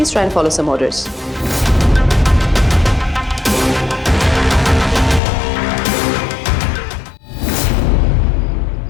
try and follow some orders.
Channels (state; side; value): drops out; right; at 5.2 s